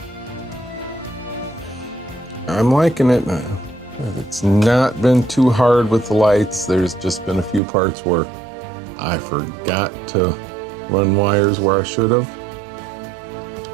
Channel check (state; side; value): drops out; left; at 7.6 s